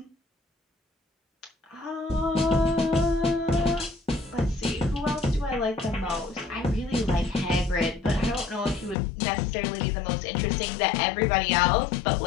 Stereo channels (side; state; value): right; drops out; at 9.0 s